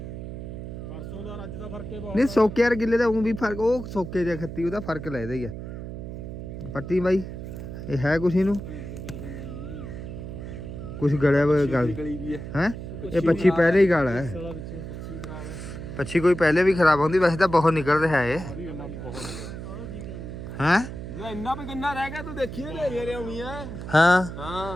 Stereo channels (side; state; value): right; noise; hum, 9 dB below the sound